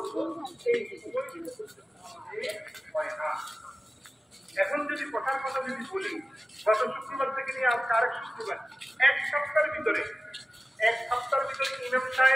এই হয় না। এখন যদি কথার কথা যদি বলি, গত শুক্রবার থেকে নিয়ে আজকে আরেক শুক্রবার, এক সপ্তাহের ভিতরে ইমাম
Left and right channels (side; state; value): both; normal; correlation 0.96